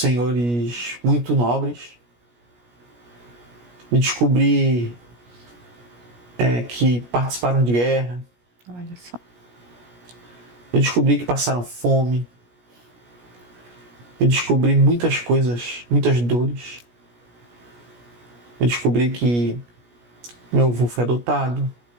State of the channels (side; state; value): left; late; 17 ms